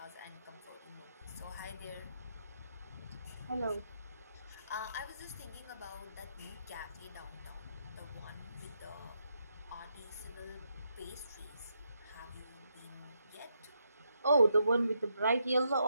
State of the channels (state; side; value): inverted; both; correlation -0.80